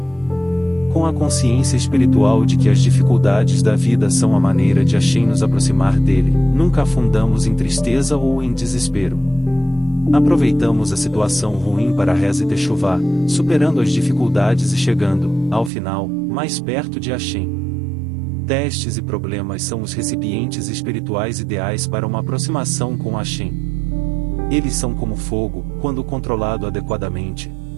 Com a consciência espiritual de que as dificuldades da vida são a maneira de Hashem nos aproximar dele, nunca afundamos em tristeza ou em desespero. Aproveitamos a situação ruim para a reza e techuvá, superando as dificuldades e chegando, ao final, mais perto de Hashem. Testes e problemas são os recipientes espirituais ideais para uma aproximação com Hashem. Eles são como fogo, quando controlado adequadamente.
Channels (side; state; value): left; drops out; at 15.7 s